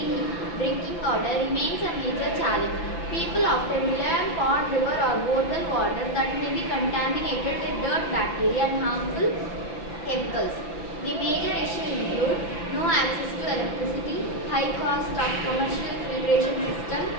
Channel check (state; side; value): late; right; 5.9 ms